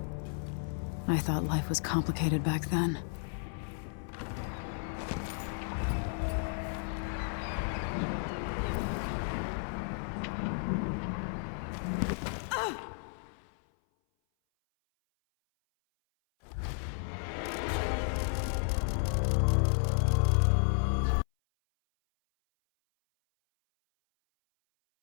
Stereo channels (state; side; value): silent; right; 56 dB below the other